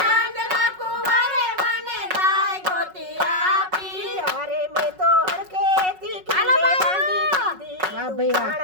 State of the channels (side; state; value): left; late; 5.4 ms